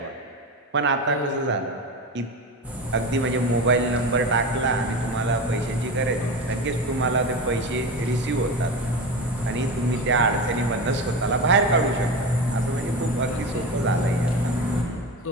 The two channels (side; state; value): both; normal; correlation 0.25